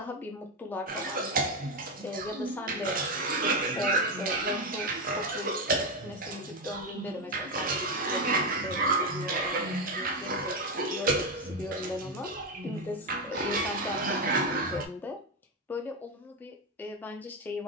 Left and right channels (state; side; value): normal; both; correlation 0.10